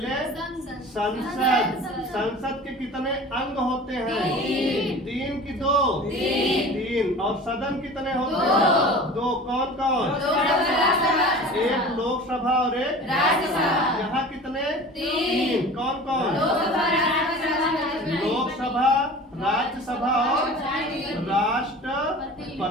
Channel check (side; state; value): both; normal; correlation 0.39